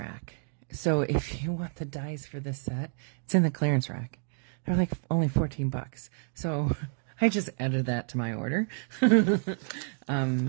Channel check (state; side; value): silent; left; 58 dB below the other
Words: So if you want the dies for this set, it's in the clearance rack. They're like only $14. So I just added that to my order,